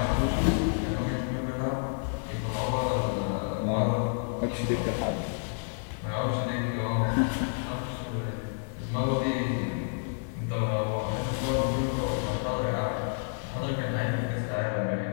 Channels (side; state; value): right; silent; digital silence